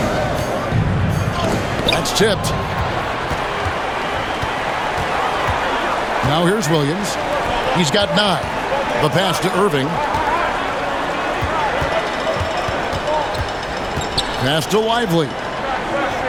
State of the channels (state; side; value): identical; both; correlation 1.00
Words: That's tipped. Now here's Williams. He's got 9. The pass to Irving. Pass to Lively.